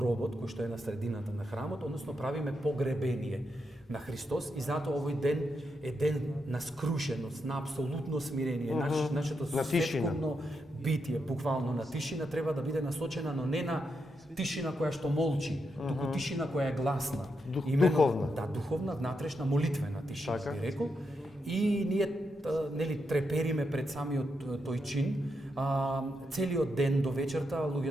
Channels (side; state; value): both; normal; correlation 0.83